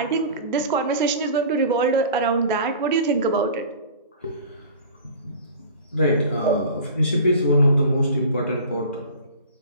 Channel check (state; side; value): inverted; both; correlation -0.39